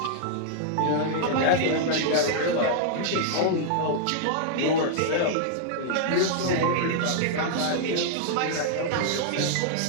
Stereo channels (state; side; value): different; both; correlation -0.01